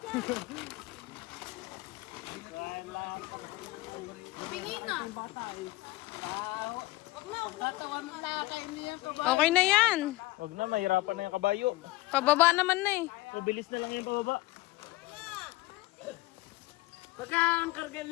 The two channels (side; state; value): right; quieter; 19.8 dB